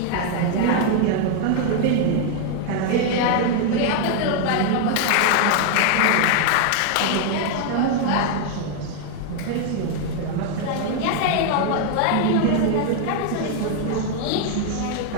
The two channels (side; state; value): both; different; correlation 0.00